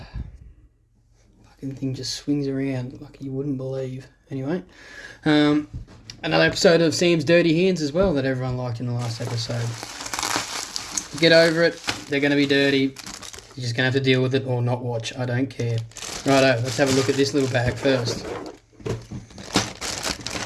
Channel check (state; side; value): identical; both; correlation 1.00